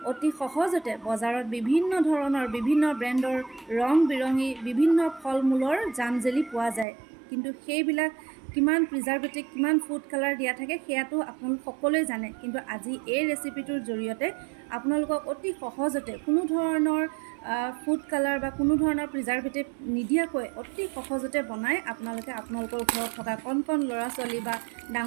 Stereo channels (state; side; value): drops out; left; at 6.9 s